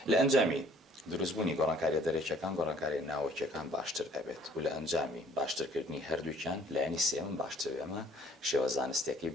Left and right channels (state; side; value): normal; both; correlation 0.57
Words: لە ئەنجامی دروستبوونی گۆڕانکاریە دەرێکیەکان گۆڕانکاری ناوەکیەکان باشتر ئەبێت و لە ئەنجامی باشترکردنی هەردووکیان لایەنی سێمم باشتر ئەمە شێوە زانستێکی